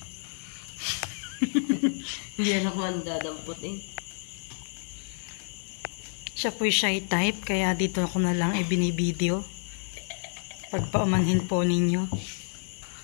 Hindi na ako ang dadamputin. Siya po'y shy type, kaya dito ako na lang binibideo. Pagpaumanhin po ninyo.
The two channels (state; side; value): silent; right; 59 dB below the other